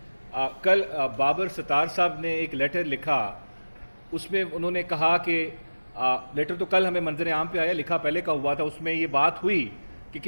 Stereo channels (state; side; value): inverted; both; correlation -1.00